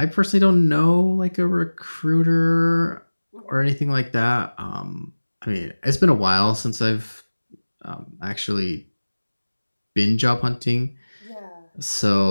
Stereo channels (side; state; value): both; inverted; correlation -1.00